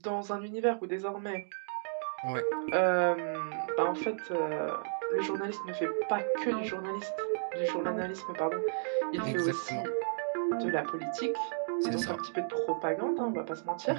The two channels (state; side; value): silent; left; digital silence